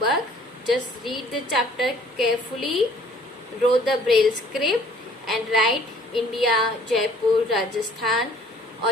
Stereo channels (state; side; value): normal; both; correlation 0.56